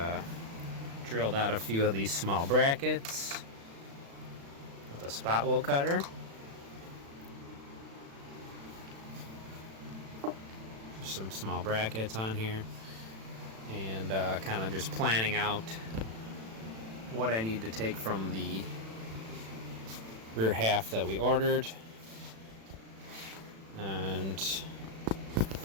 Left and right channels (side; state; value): left; late; 36 ms